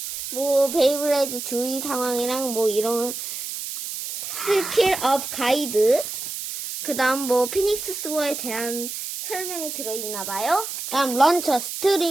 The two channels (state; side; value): noise; right; hiss, 6 dB below the sound